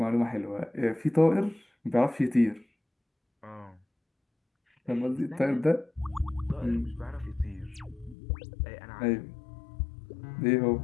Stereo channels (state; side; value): drops out; right; at 8.2 s